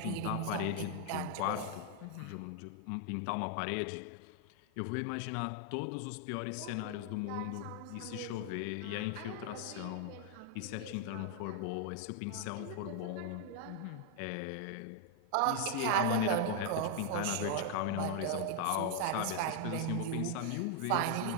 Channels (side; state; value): both; different; correlation 0.00